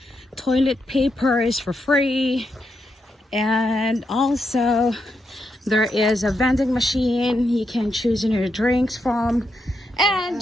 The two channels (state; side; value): normal; both; correlation 0.83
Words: Toilet paper is for free, and also there is a vending machine you can choose your drinks from.